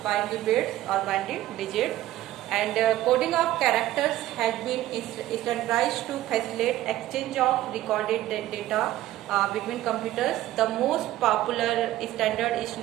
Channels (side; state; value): left; quieter; 14.8 dB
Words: binary bits or binary digit, and coding of characters has been standardized to facilitate exchange of recorded data between computers. The most popular standard is